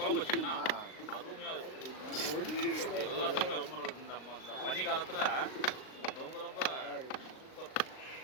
வச்சிங்கன்னா அருமையாக இருக்கும். எல்லாத்துக்குமே ரொம்ப நல்லது. இந்த பனி காலத்தில் ரொம்ப ரொம்ப சூப்பர்.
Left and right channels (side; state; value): right; late; 38 ms